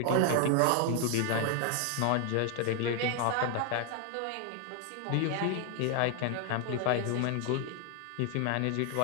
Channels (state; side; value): different; both; correlation 0.00